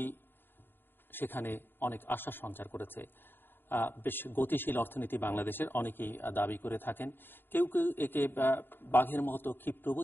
সেখানে অনেক আশা সঞ্চার করেছে। বেশ গতিশীল অর্থনীতি বাংলাদেশের অনেকেই দাবি করে থাকেন। কেউ কেউ একে বাঘের মতো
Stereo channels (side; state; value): right; late; 0.098 ms